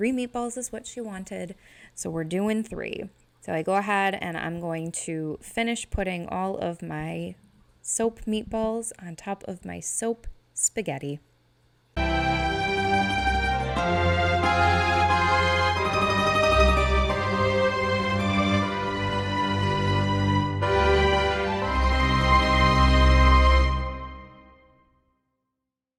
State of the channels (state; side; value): identical; both; correlation 1.00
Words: meatballs is what she wanted. So we're doing 3. So I go ahead and I'm going to finish putting all of my soap meatballs on top of my soap spaghetti.